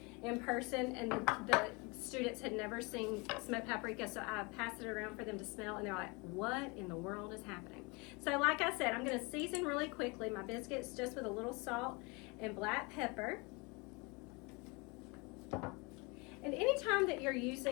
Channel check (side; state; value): right; quieter; 28.4 dB